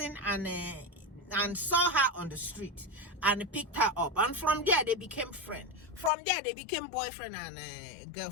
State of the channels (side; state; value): right; drops out; at 6.1 s